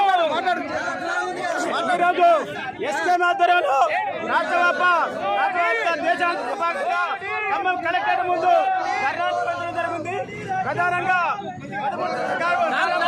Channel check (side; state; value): both; identical; correlation 1.00